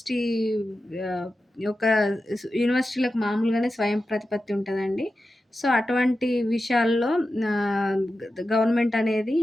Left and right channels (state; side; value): normal; both; correlation 0.92